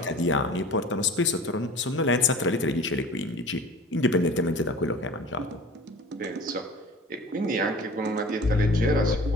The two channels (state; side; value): normal; both; correlation 0.41